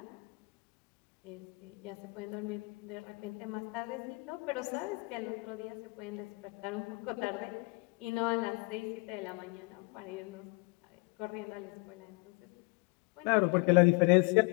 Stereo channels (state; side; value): quieter; right; 27.6 dB